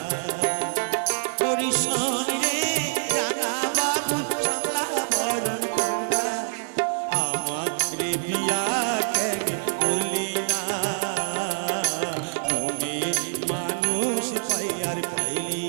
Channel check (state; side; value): silent; left; digital silence